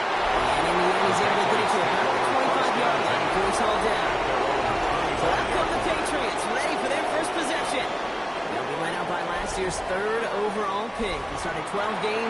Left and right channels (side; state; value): both; identical; correlation 1.00